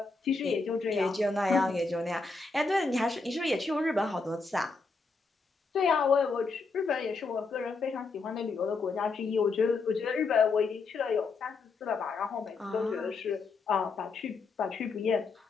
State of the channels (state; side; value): quieter; right; 4.1 dB